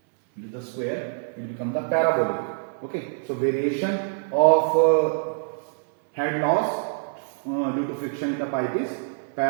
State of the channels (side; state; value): left; silent; 62 dB below the other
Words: With the square, it becomes the parabolic. Okay. So variation of head loss due to friction in the pipe is